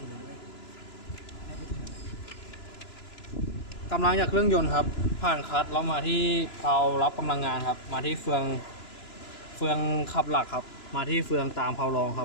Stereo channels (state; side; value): late; right; 2.9 ms